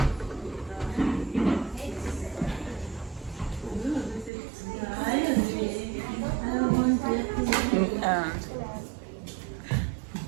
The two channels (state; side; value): drops out; left; at 4.3 s